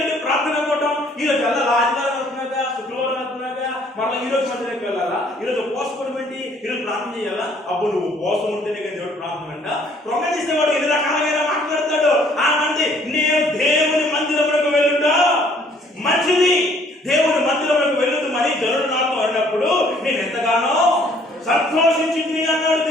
ఏంటి ప్రార్థన పోవటం, ఈ రోజు వెళ్ళాలా, ఆదివారం వెళ్తున్నాగా, శుక్రవారం వెళ్తున్నాగా, మళ్ళీ ఈ రోజు మందిరానికి వెళ్ళాలా, ఈ రోజు ఉపవాసం ఏంటి, ఈ రోజు ప్రార్థన చేయాలా? అప్పుడు నువ్వు ఉపవాసం ఉంటేనే కానీ దేవుడు ప్రార్థన అంట. ప్రొంగేసేవాడు ఎన్ని రకాలుగా మాట్లాడతాడు. ఆ మంది నేను దేవుని మందిరములకు వెళ్ళుట మంచిది, దేవుని మందిరములకు వెళ్ళుతూ మరి జనుడు నాతో అన్నప్పుడు నేను ఎంతగానో సంతోషించింది అన్నాడు.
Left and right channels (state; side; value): normal; both; correlation 0.61